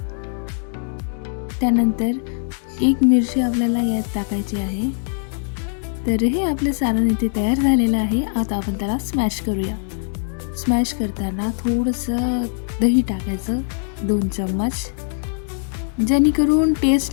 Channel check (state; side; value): silent; right; digital silence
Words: त्यानंतर 1 मिरची आपल्याला यात टाकायची आहे. तर हे आपलं सारण इथे तयार झालेलं आहे. आता आपण त्याला स्मॅश करूया. स्मॅश करताना थोडंसं दही टाकायचं 2 चम्मच, जेणेकरून